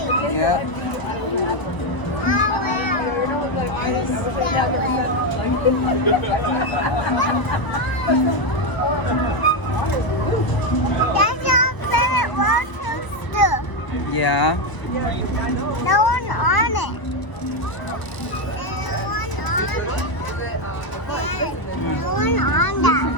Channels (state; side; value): late; right; 1.0 ms